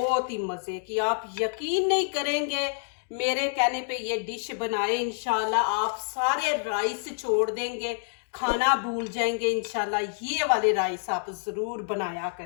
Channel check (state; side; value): silent; right; digital silence